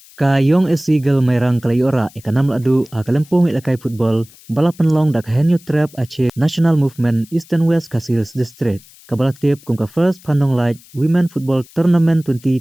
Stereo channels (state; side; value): noise; left; hiss, 25 dB below the sound